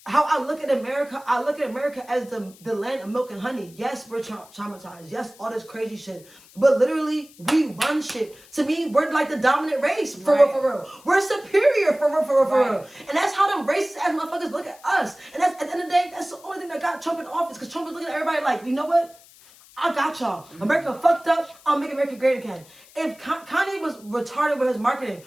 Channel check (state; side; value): noise; left; hiss, 25 dB below the sound